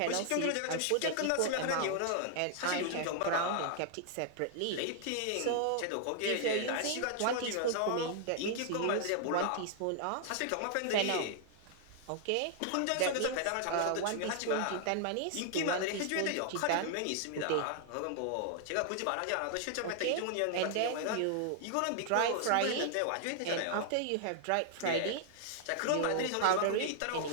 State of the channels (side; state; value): both; different; correlation -0.01